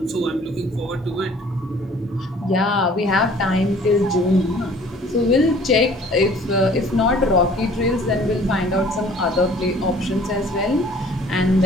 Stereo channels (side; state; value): both; normal; correlation 0.52